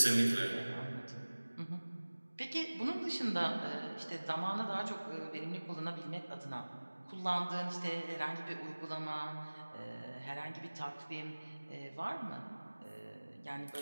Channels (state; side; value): inverted; both; correlation -1.00